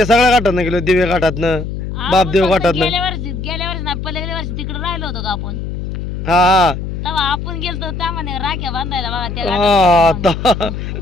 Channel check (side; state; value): left; noise; hum, 6 dB below the sound